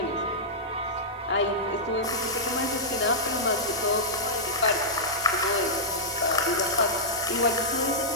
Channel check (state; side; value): normal; both; correlation -0.11